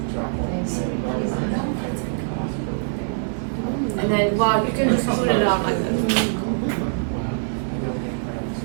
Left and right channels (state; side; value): silent; left; digital silence